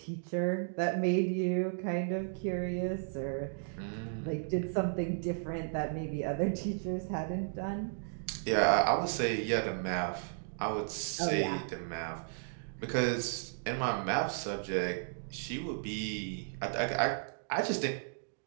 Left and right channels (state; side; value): silent; left; digital silence